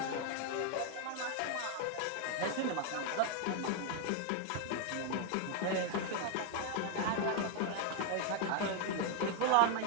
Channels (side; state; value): both; different; correlation 0.00